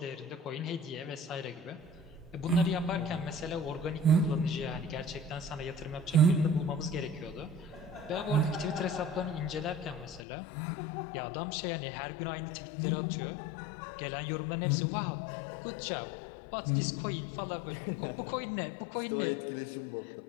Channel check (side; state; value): right; drops out; at 10.2 s